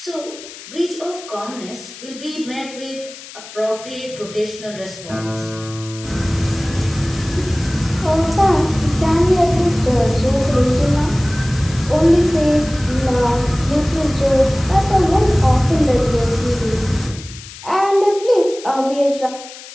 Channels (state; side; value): noise; left; hiss, 16 dB below the sound